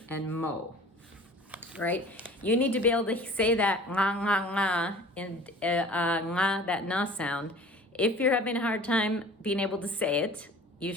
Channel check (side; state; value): both; normal; correlation 0.44